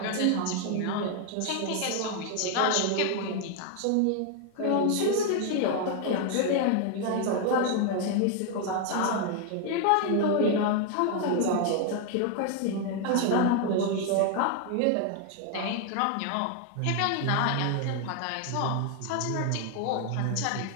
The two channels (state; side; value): different; both; correlation 0.00